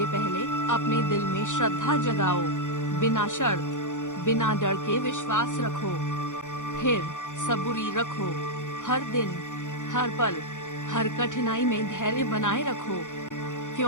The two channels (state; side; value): late; right; 0.86 ms